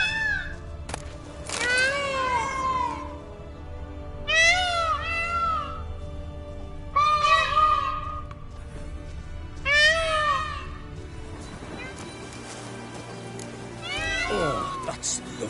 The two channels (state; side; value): identical; both; correlation 1.00